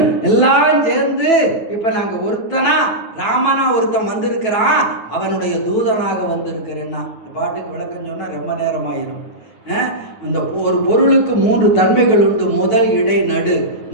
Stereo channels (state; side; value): late; right; 9.1 ms